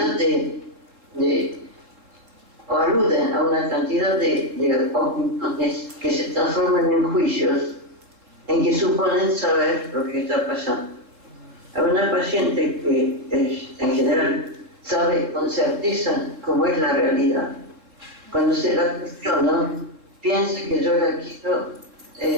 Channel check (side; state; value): left; late; 3.7 ms